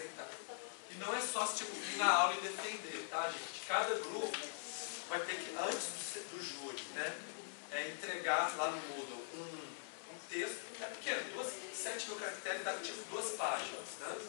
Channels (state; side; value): silent; right; digital silence